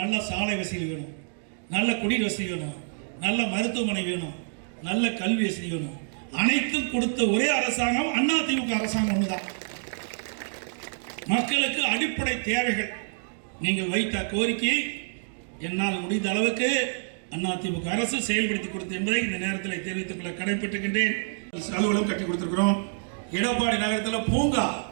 நல்ல சாலை வசதி வேணும், நல்ல குடிநீர் வசதி வேணும், நல்ல மருத்துவமனை வேணும், நல்ல கல்வி வசதி வேணும். அனைத்தும் கொடுத்த ஒரே அரசாங்கம் அண்ணா திமுக அரசாங்கம் ஒண்ணுதான். மக்களுக்கு அடிப்படை தேவைகள் நீங்கள் வைத்த கோரிக்கையை என்னால் முடிந்த அளவுக்கு அதிமுக அரசு செயல்படுத்தி கொடுத்து என்பதை இந்த நேரத்தில் தெரிவித்துக் கொள்ள கடைபெற்றுகின்றேன். அலுவலகம் கட்டி கொடுத்திருக்கிறோம். எடப்பாடி நகரத்தில் பூங்கா,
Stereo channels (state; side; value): silent; left; digital silence